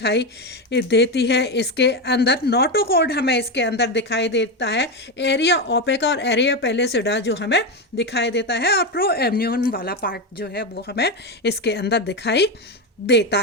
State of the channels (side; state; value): both; normal; correlation 0.12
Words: देती है इसके अंदर, नोटोकॉर्ड हमें इसके अंदर दिखाई देता है, एरिया ओपेका और एरिया पेलिसिडा जो हमें दिखाई देता है, और प्रो एम्नियन वाला पार्ट जो है वो हमें इसके अंदर दिखाई देता